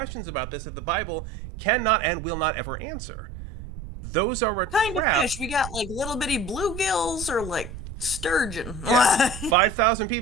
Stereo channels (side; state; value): right; noise; rumble, 10 dB below the sound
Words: about this that the Bible cannot and will not ever answer. Those are a Kind of trap. fish. We got like little bitty bluegills or like sturgeon. Yeah, 5,000